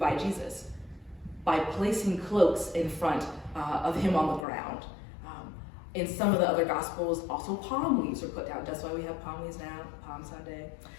Jesus by placing cloaks in front of him on the ground. In some of the other Gospels, also palm leaves were put down. That's why we have palm leaves now, Palm Sunday.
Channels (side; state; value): right; drops out; at 4.5 s